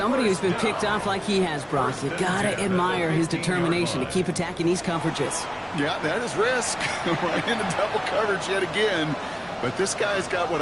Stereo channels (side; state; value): both; identical; correlation 1.00